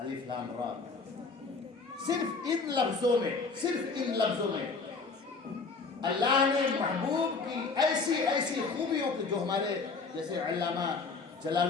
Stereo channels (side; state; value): right; quieter; 4.4 dB